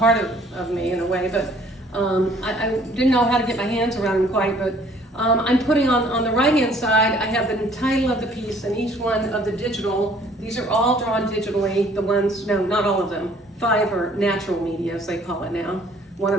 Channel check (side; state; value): both; normal; correlation 0.58